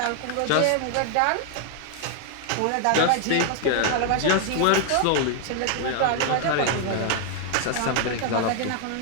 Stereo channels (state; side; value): different; both; correlation 0.00